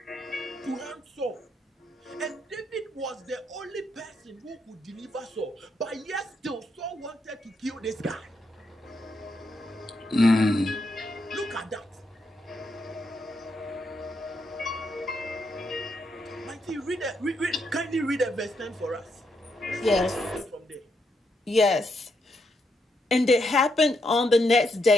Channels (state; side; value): normal; both; correlation 0.79